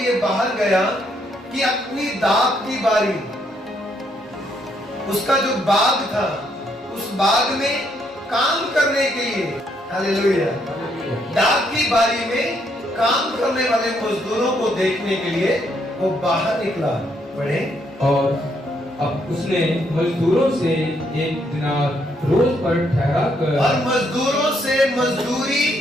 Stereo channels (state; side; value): normal; both; correlation 0.73